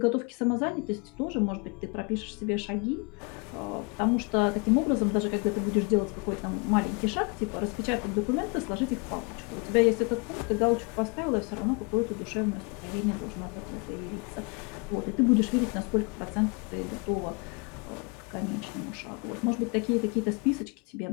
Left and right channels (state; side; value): quieter; right; 31.7 dB